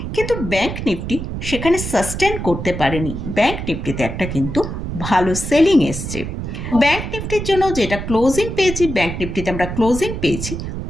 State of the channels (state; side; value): noise; right; rumble, 6 dB below the sound